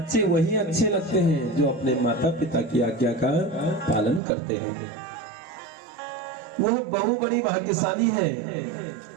वही अच्छे लगते हैं जो अपने माता पिता की आज्ञा का पालन करते हैं। वह बहु बड़ी भाग्यशाली है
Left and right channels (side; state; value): left; drops out; at 4.2 s